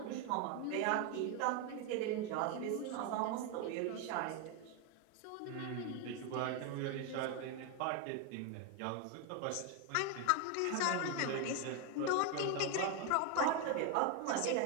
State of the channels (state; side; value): different; both; correlation 0.01